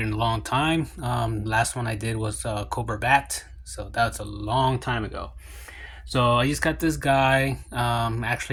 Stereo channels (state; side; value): identical; both; correlation 1.00